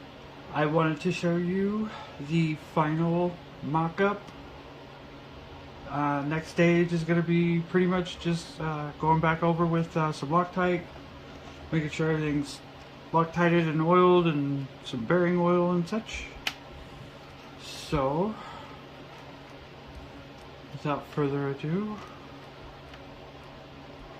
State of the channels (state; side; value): identical; both; correlation 1.00